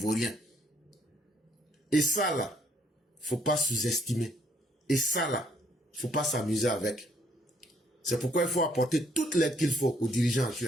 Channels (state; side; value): normal; both; correlation 0.66